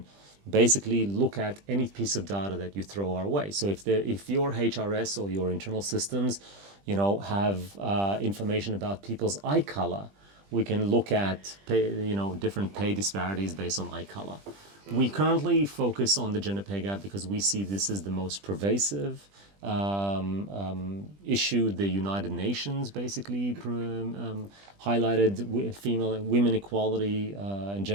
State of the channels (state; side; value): late; left; 20 ms